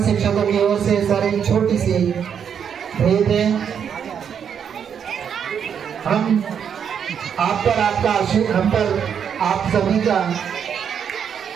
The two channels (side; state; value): left; quieter; 7.8 dB